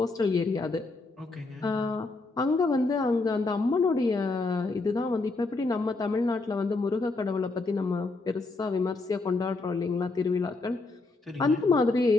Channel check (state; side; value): quieter; right; 3.5 dB